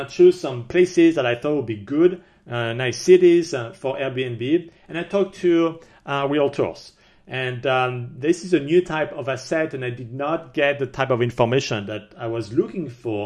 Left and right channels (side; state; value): both; identical; correlation 1.00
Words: choose some places that I thought would be good, nice cities for Airbnb. And I talked to realtors. And this is a new type of asset, and I did not get the type of information that I was looking